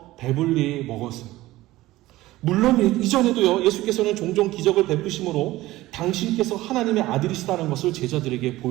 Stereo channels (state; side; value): quieter; left; 17.3 dB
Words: 배불리 먹었어요. 물론 이전에도요, 예수께서는 종종 기적을 베푸심으로 당신께서 하나님의 아들이시다는 것을 제자들에게